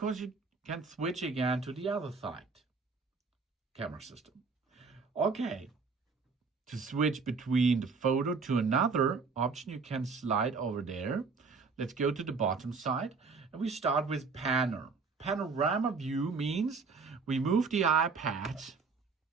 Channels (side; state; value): left; quieter; 4.7 dB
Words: you can switch again to the other side camera system. Okay, to switch between the photo to another option, you can slide over there. Let's go to the bottom side and we start with panorama view. Means we move the iPad